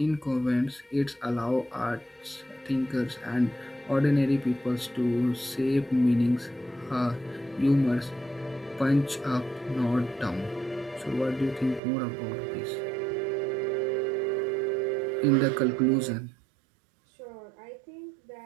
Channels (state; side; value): drops out; left; at 11.8 s